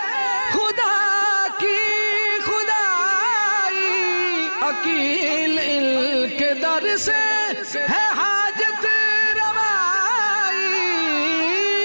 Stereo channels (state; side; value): inverted; both; correlation -1.00